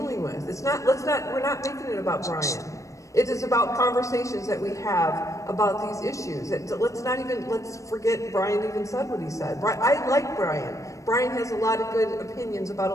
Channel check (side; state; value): right; late; 0.15 ms